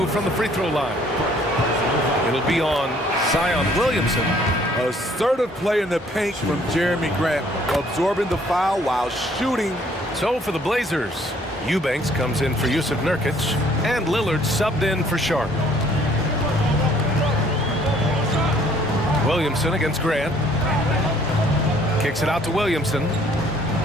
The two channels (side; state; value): both; normal; correlation 0.60